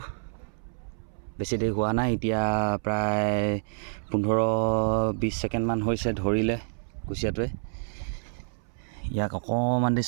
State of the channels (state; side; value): silent; left; 59 dB below the other